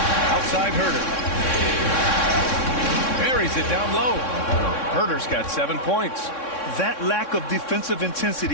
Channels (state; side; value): late; right; 3.6 ms